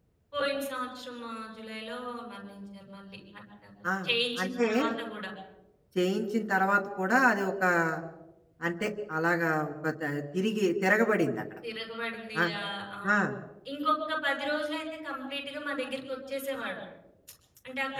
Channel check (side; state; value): both; identical; correlation 1.00